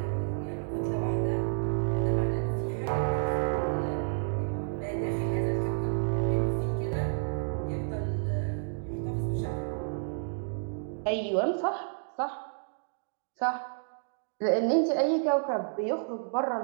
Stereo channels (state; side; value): silent; left; digital silence